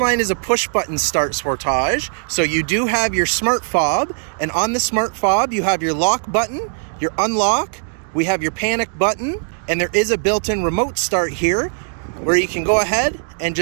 is a push-button start Sportage, so you do have your smart fob, and on the smart fob you have your lock button, your unlock, we have your panic button, and there is a built-in remote start here where you can go ahead and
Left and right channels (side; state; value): left; silent; digital silence